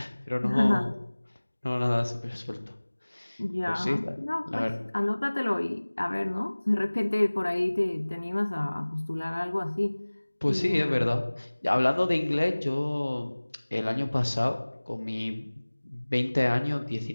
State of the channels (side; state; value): both; inverted; correlation -1.00